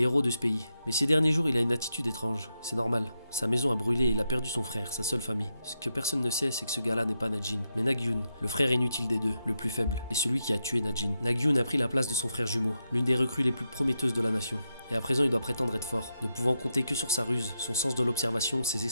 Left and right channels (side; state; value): both; inverted; correlation -0.84